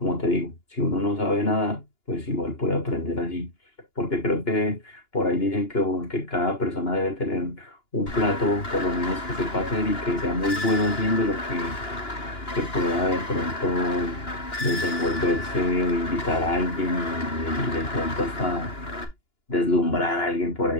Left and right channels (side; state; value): right; late; 2.9 ms